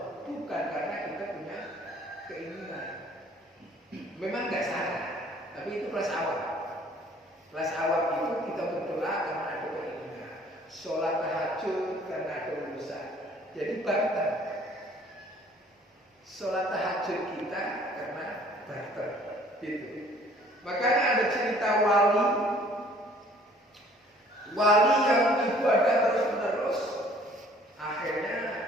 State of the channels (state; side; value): normal; both; correlation 0.56